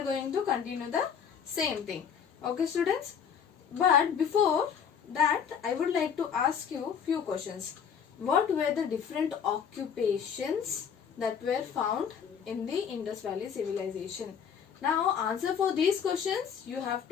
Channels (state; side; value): quieter; right; 7.5 dB